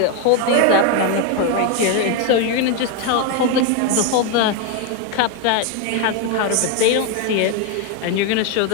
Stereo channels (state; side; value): different; both; correlation 0.02